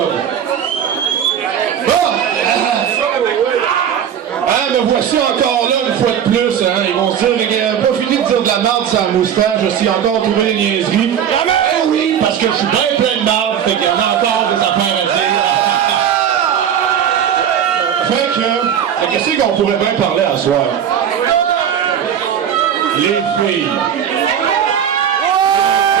Bon! Me voici encore là une fois de plus. Hein. Ils vont se dire, il n'a pas fini de dire de la merde sur la moustache, je suis encore trouvé des niaiseries. Eh oui, parce que je suis bien plein de merde, fait qu'il y en a encore des affaires à dire. Fait que, qu'est-ce qu'on pourrait bien parler à soir? Les filles.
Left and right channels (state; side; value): quieter; left; 8.9 dB